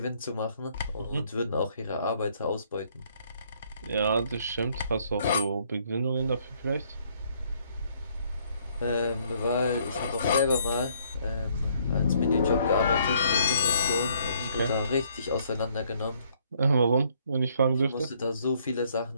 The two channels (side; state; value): both; inverted; correlation -0.66